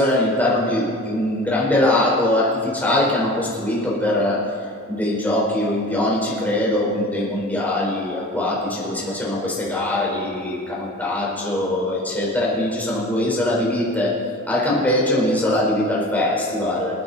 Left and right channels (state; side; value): normal; both; correlation 0.39